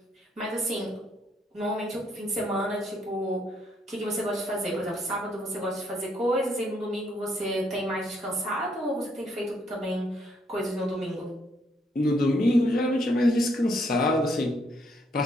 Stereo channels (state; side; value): normal; both; correlation 0.72